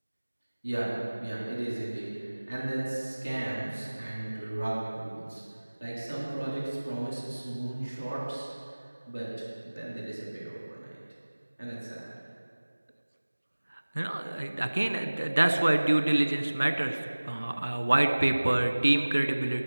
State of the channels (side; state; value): both; inverted; correlation -1.00